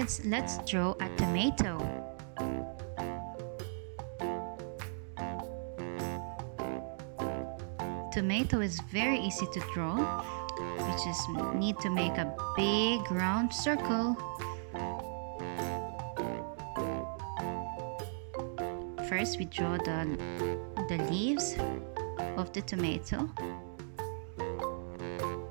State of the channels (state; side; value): silent; left; digital silence